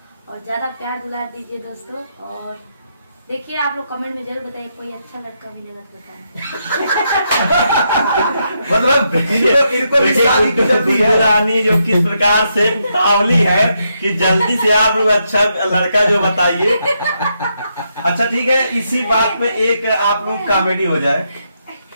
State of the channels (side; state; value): both; inverted; correlation -0.80